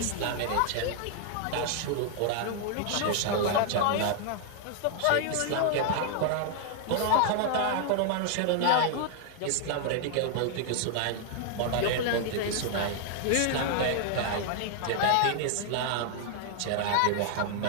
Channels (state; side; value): different; both; correlation 0.00